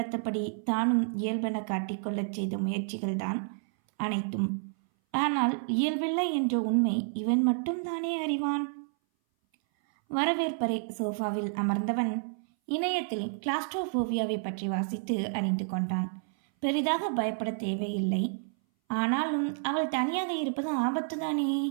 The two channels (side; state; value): left; silent; 58 dB below the other